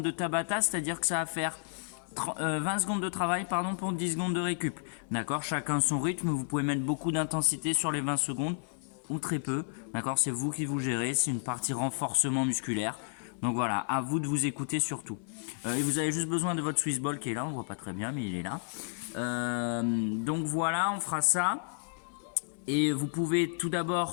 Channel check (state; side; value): silent; right; 57 dB below the other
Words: de Tabata, c'est-à-dire que ça va faire 20 secondes de travail pour 10 secondes de récup. D'accord, chacun son rythme, vous pouvez mettre beaucoup d'intensité sur les 20 secondes ou très peu. D'accord, c'est vous qui vous gérez, c'est une partie renforcement musculaire. Donc voilà, à vous de vous écouter surtout. Et vous avez juste besoin de votre Swissball qui est là, on voit pas très bien mais il est là. Donc voilà, on fera ça. Et vous pouvez tout